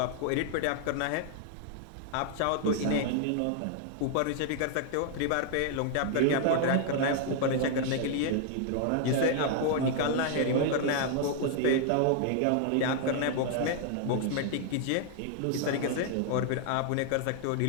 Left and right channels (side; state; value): both; different; correlation 0.00